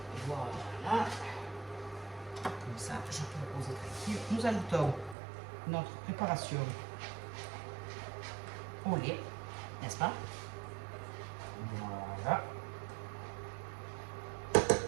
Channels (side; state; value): left; drops out; at 5.2 s